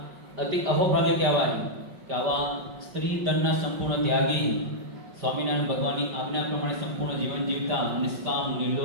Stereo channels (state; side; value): late; left; 5.4 ms